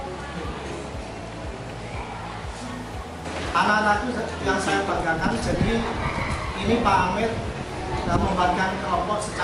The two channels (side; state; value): both; identical; correlation 1.00